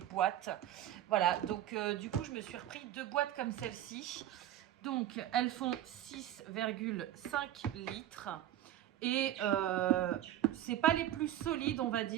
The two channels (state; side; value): quieter; left; 12.3 dB